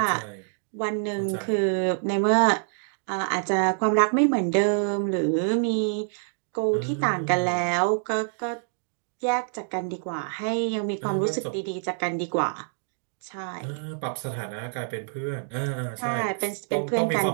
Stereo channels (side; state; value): left; silent; digital silence